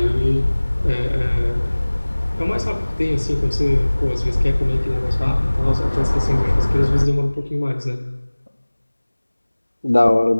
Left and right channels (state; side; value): inverted; both; correlation -1.00